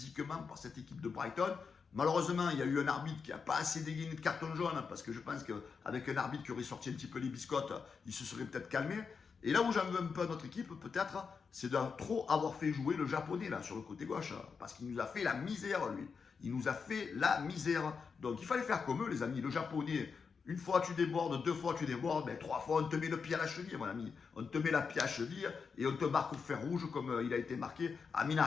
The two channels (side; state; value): right; quieter; 5.5 dB